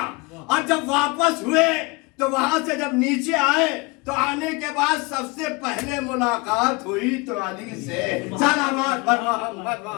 اور جب واپس ہوئے تو وہاں سے جب نیچے آئے تو آنے کے بعد سب سے پہلے ملاقات ہوئی تو علی سے. صلوات پر محمد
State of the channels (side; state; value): right; quieter; 26.5 dB